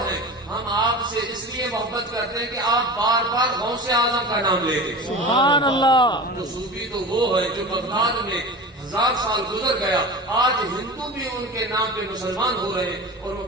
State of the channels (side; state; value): both; normal; correlation 0.32